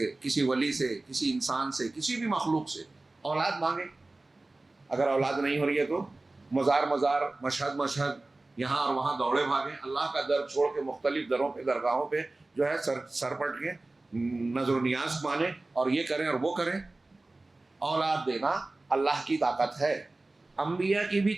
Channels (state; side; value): quieter; left; 3.0 dB